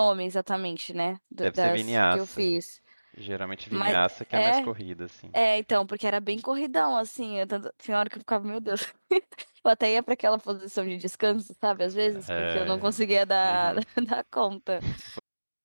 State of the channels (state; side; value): inverted; both; correlation -1.00